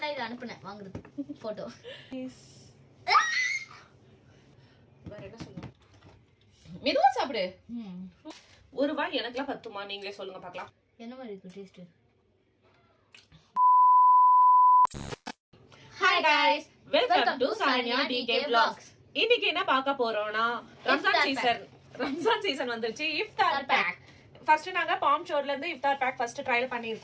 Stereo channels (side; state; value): both; identical; correlation 1.00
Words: இத அனுப்புனேன் வாங்குறது போட்டோ. வேற என்ன சொல்லணும்? மெதுவா சாப்பிடு. ஒரு வாய் எனக்குலாம் பத்துமா? நீங்களே சொல்லுங்க பார்க்கலாம். என்ன மாதிரி இருக்கு taste? Hi guys, welcome to Saniya DK vlogs. இன்னைக்கு என்ன பார்க்க போறோம்னா ரம்ஜான் சீசன் வந்துருச்சு. இஃப்தார் பேக் ஃபர்ஸ்ட் நாங்க பாம் ஷோர்ல இருந்து இஃப்தார் பேக் ஃபர்ஸ்ட் ட்ரையல்